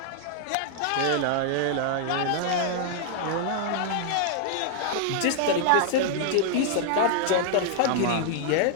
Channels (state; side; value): different; both; correlation -0.01